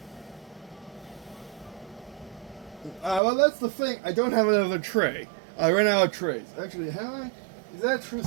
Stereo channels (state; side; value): drops out; left; at 3.2 s